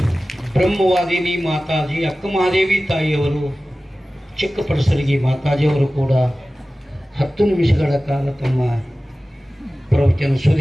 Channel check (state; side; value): normal; both; correlation 0.96